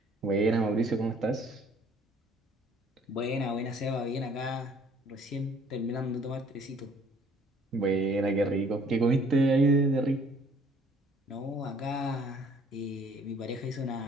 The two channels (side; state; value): both; normal; correlation 0.58